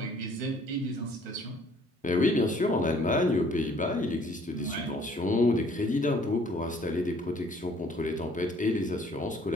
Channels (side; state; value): both; normal; correlation 0.59